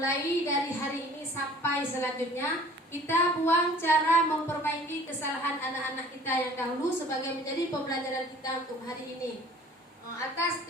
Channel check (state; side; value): normal; both; correlation 0.49